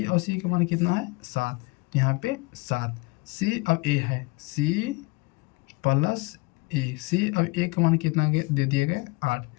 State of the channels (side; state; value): right; quieter; 24.7 dB